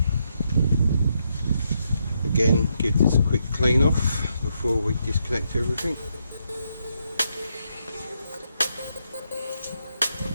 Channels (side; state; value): both; inverted; correlation -0.79